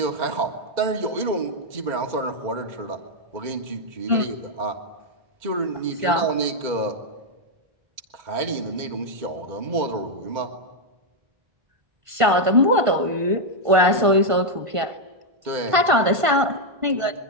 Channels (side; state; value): left; late; 1.5 ms